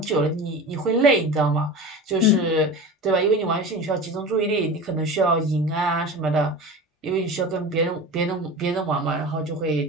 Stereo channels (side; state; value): both; normal; correlation 0.32